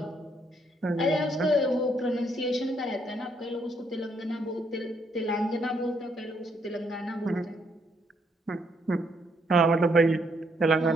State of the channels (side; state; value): both; normal; correlation 0.72